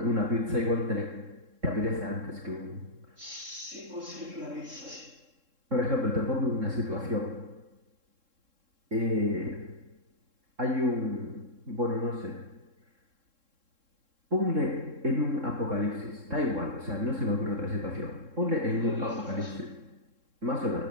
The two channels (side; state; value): left; late; 3.7 ms